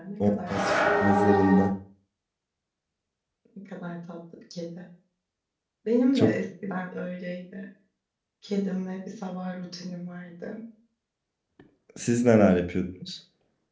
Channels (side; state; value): both; identical; correlation 1.00